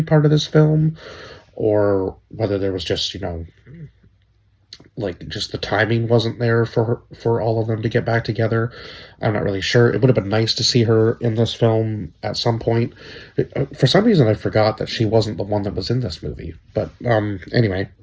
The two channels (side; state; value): both; identical; correlation 1.00